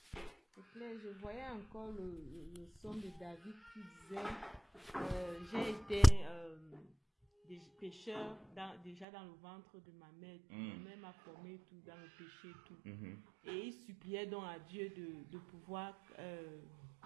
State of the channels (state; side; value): drops out; left; at 9.1 s